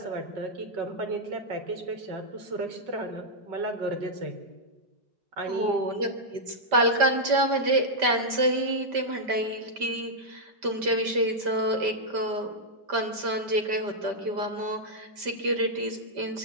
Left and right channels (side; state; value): left; late; 5.1 ms